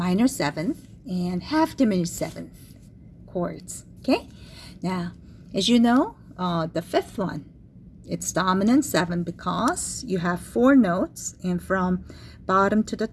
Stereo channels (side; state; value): both; identical; correlation 1.00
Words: seventh, and half diminished seventh chords. Okay, now as you know, the fifth one, it's dominant seven because you have four notes, and from bottom to the